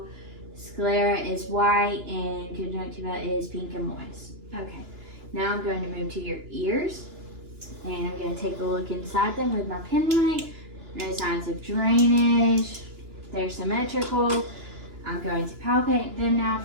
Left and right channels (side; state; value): left; late; 2.9 ms